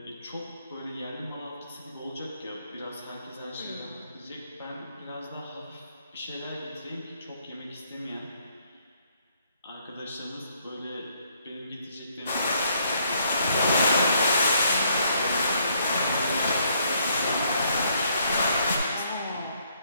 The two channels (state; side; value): inverted; both; correlation -0.70